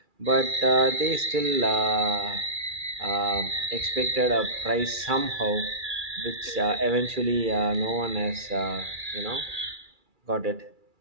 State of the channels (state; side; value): late; left; 2.3 ms